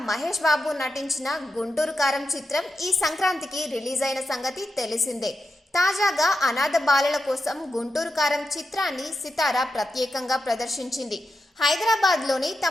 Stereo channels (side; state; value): both; normal; correlation 0.88